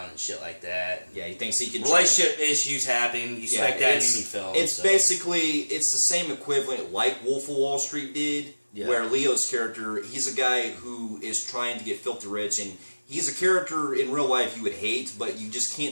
and shit like that. Yeah, he thinks he can. Relationship issues happen. You expect that in any film. It's basically the same equivalent like Wolf of Wall Street did, where Leo's character, he's a guy who is trying to get filthy rich, and he's a character in real life you would hate, but you just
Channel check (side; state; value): both; inverted; correlation -1.00